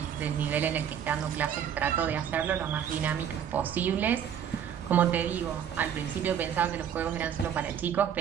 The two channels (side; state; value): left; quieter; 8.9 dB